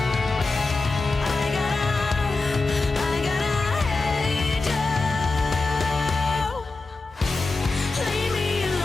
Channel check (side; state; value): right; quieter; 3.6 dB